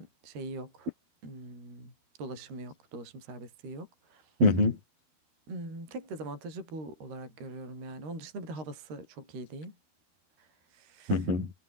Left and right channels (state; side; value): late; left; 13 ms